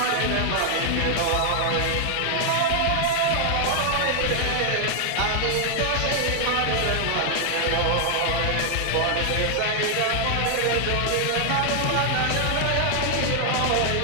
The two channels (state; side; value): different; both; correlation 0.00